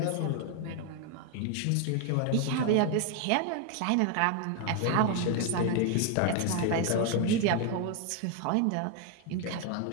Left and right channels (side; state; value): both; different; correlation 0.01